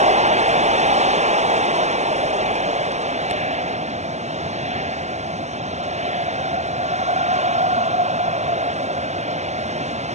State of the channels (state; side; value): late; left; 0.33 ms